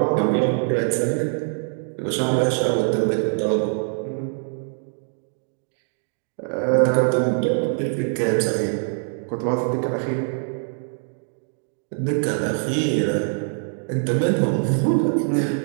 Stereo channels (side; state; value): left; silent; 63 dB below the other